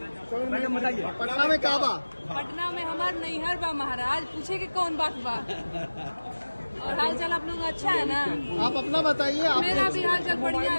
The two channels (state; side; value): inverted; both; correlation -1.00